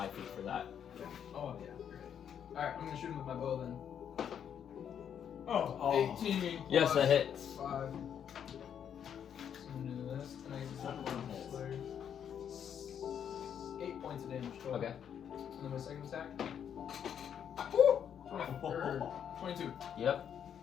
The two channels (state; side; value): quieter; right; 8.6 dB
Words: feet for that. Oh, yeah. Great. Alright, I'm gonna shoot him with my bow then. Oh. 18. Yes, that plus hits. 5. So I'm gonna do this, and I get the second one. 8 points of damage total. Okay. And then my second attack. Woo! 22. Yep.